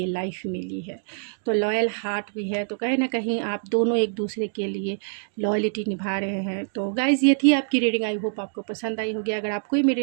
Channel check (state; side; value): silent; left; digital silence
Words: लाइफ मिली है। तो लॉयल हार्ट भी है, तो कहीं ना कहीं आप दोनों एक दूसरे के लिए लॉयलिटी निभा रहे हैं। तो गाइज़, ये थी आपकी रीडिंग। आई होप आपको पसंद आई होगी। अगर आपको